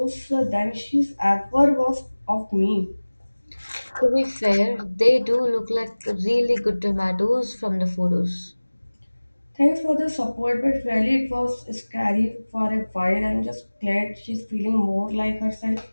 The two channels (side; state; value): both; inverted; correlation -1.00